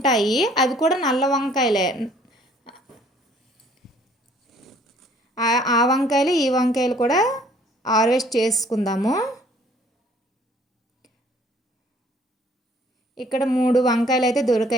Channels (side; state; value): both; normal; correlation 0.58